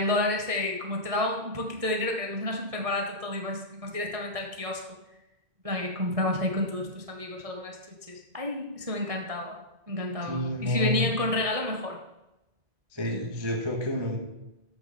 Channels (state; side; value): late; left; 1.6 ms